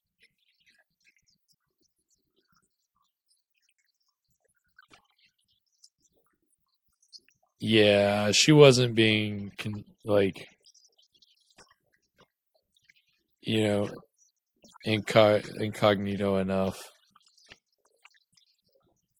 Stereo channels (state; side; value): identical; both; correlation 1.00